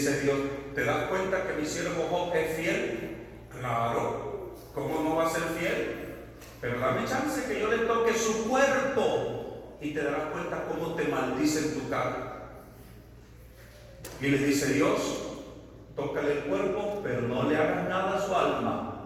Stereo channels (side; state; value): both; identical; correlation 1.00